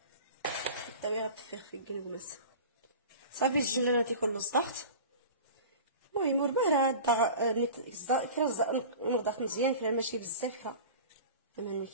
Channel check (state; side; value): inverted; both; correlation -0.36